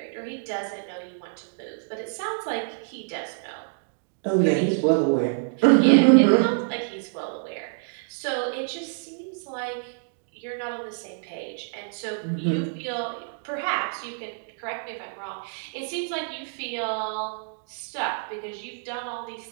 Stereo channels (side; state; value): left; silent; digital silence